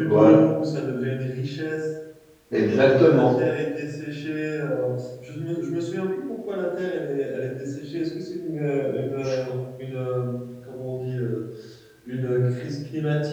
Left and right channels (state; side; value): identical; both; correlation 1.00